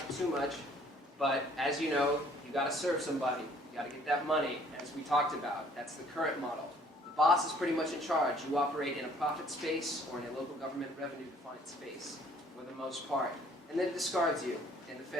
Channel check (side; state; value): both; normal; correlation 0.58